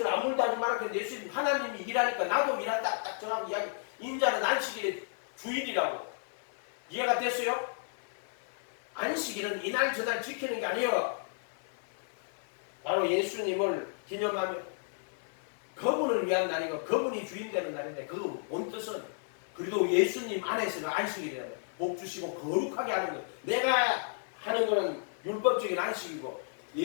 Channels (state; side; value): silent; right; digital silence